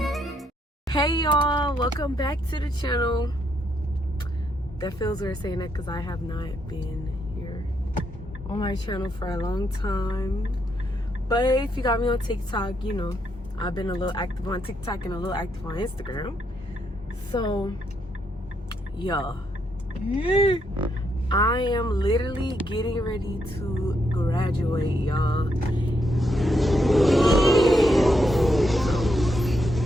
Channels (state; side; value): normal; both; correlation 0.78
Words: hey y'all, welcome back to the channel. That feels weird saying that because I have not been here on my channel for a long time. But if you got me on TikTok, you know, I've been a little active on TikTok and a little active on Instagram. So, yeah. I am literally getting ready to graduate, y'all.